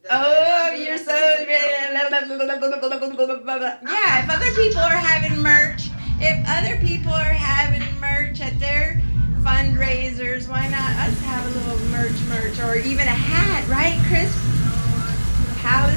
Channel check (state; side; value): inverted; both; correlation -1.00